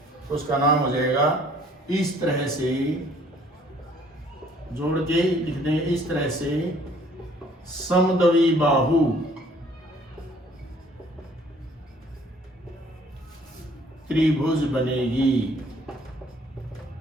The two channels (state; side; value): normal; both; correlation 0.59